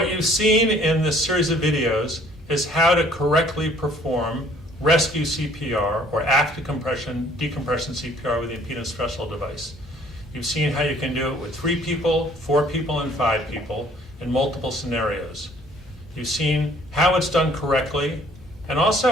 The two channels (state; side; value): normal; both; correlation 0.58